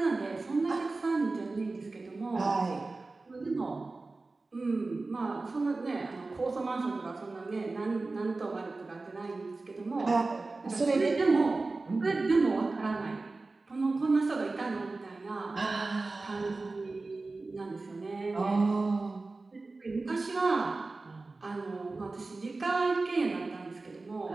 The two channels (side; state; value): left; quieter; 3.5 dB